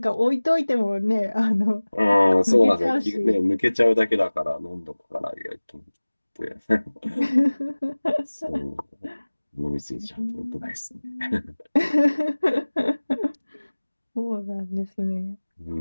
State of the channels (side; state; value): both; inverted; correlation -1.00